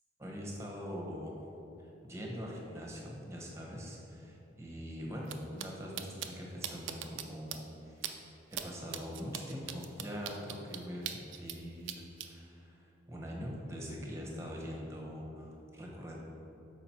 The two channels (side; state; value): both; normal; correlation 0.55